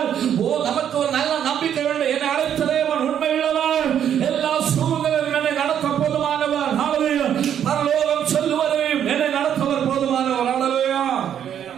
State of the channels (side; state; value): left; quieter; 9.4 dB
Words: நமக்கு ஒரு நல்ல நம்பிக்கை வேண்டும். என்னை அழைத்த தேவன் உண்மை உள்ளவர், எல்லா சூழ்நிலையிலும் என்னை நடத்த போதுமானவர். பரலோகம் செல்லுவதையும் என்னை நடத்தவர் போதுமானவர்.